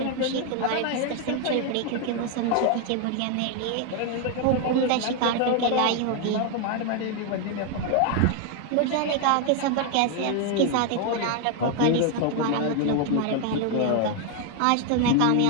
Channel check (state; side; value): different; both; correlation 0.01